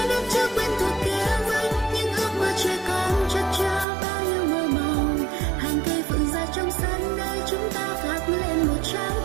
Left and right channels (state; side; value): drops out; left; at 3.9 s